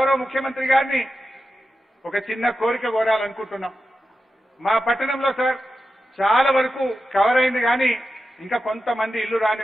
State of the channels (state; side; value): normal; both; correlation 0.91